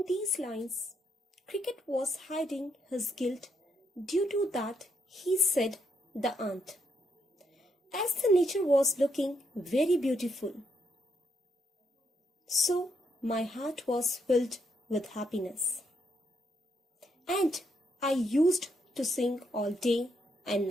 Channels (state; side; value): normal; both; correlation 0.77